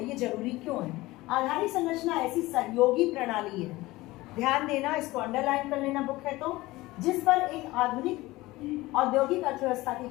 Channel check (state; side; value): quieter; right; 19.3 dB